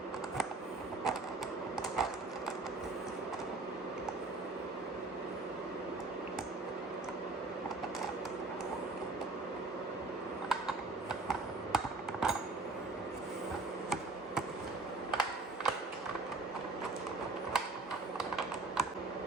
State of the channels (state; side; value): quieter; left; 3.4 dB